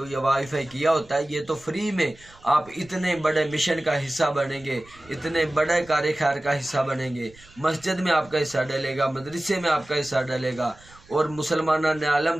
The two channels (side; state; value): right; noise; rumble, 25 dB below the sound